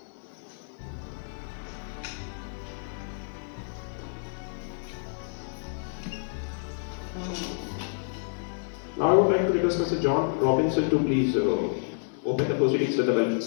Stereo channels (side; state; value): right; silent; 59 dB below the other